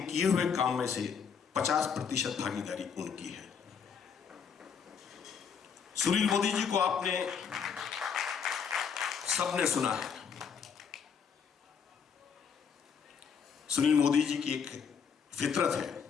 किए हुए काम में से 50% भागीदारी उनकी है। सुनील मोदी जी को आपने सबने सुना है। सुनील मोदी जी की एक फितरत है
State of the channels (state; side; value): quieter; right; 6.7 dB